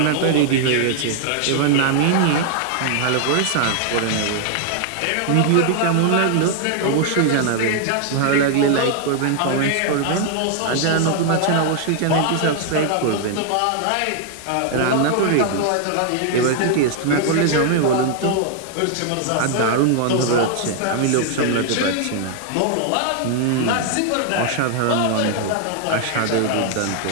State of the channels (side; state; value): both; different; correlation 0.00